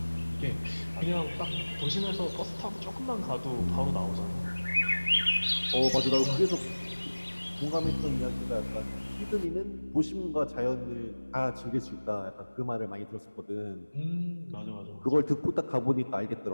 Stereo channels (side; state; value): both; inverted; correlation -1.00